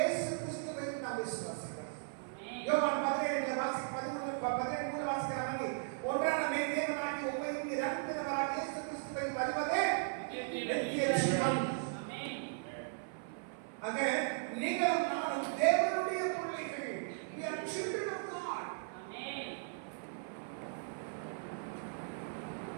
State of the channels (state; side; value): silent; left; 53 dB below the other